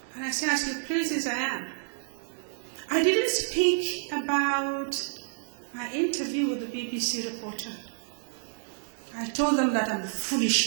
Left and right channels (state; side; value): silent; left; digital silence